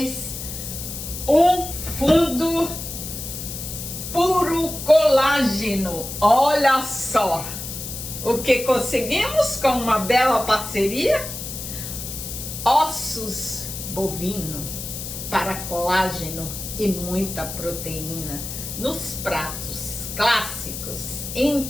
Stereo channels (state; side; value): noise; left; hiss, 8 dB below the sound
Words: um fundo puro colágeno. Olha só o que conseguimos com uma bela parceria. Ossos bovino para colágeno e muita proteína nos pratos clássicos